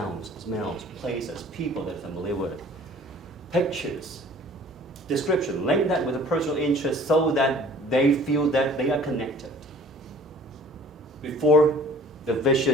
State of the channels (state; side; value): normal; both; correlation 0.50